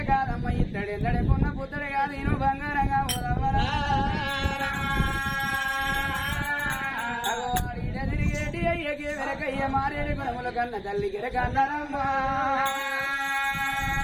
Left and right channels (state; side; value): identical; both; correlation 1.00